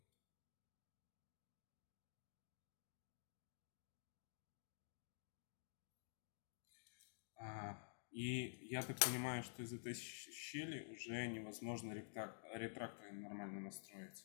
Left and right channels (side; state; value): right; silent; digital silence